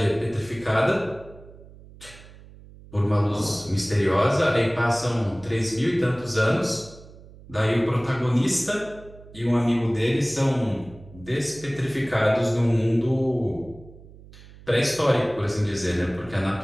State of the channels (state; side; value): noise; right; hum, 20 dB below the sound